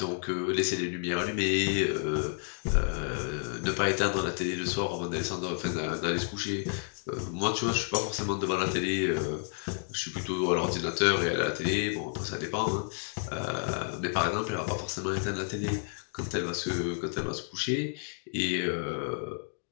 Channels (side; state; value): right; silent; 57 dB below the other